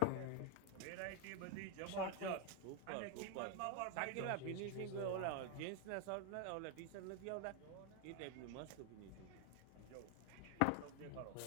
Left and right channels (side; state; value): both; different; correlation 0.01